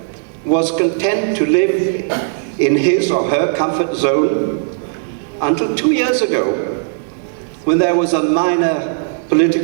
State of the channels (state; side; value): silent; left; 58 dB below the other